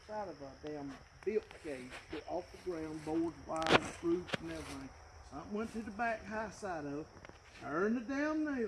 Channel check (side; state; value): both; identical; correlation 1.00